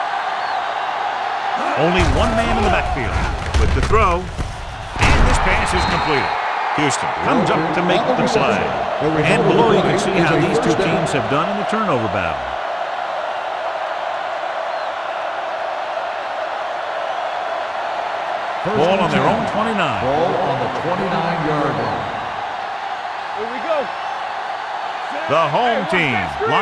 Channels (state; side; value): identical; both; correlation 1.00